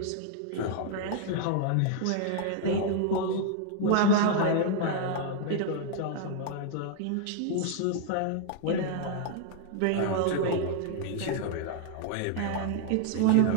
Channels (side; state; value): both; different; correlation 0.00